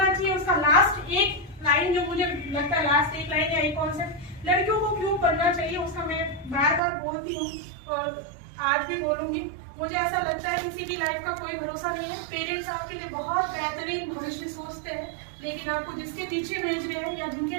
चाहिए, उसका लास्ट एक लाइन जो मुझे लगता है, लास्ट एक लाइन या एक कॉन्सेप्ट, लड़कियों को क्यों करना चाहिए, उसका मैं बार बार बोलती हूँ और आज भी बोलूंगी। मुझे ऐसा लगता है किसी की लाइफ का कोई भरोसा नहीं है। पेरेंट्स आपके लिए बहुत बेहतरीन भविष्य सोचते हैं, लेकिन आपको जिसके पीछे भेज रहे हैं या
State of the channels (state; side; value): drops out; left; at 6.8 s